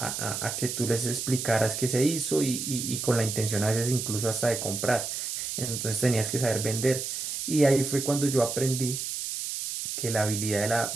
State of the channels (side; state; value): right; noise; hiss, 4 dB below the sound